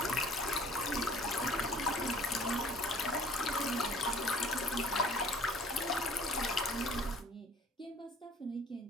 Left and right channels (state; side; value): normal; both; correlation 0.53